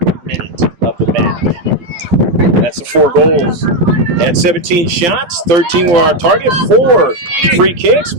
minute of the match. That's the 4 goals. They had 17 shots, 13 were on target, 4 free kicks,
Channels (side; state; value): left; late; 12 ms